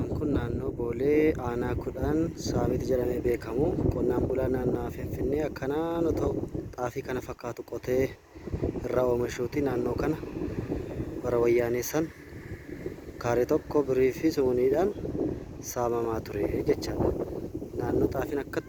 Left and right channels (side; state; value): both; identical; correlation 1.00